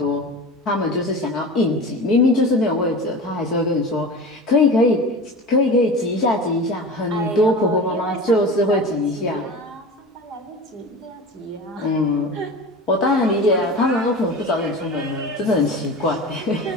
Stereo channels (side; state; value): both; normal; correlation 0.32